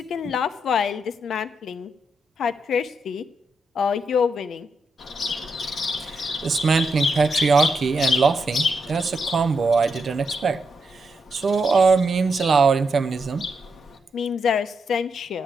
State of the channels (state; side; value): normal; both; correlation 0.82